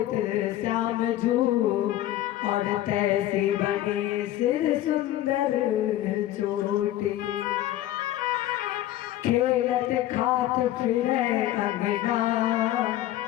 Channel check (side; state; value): right; quieter; 13.9 dB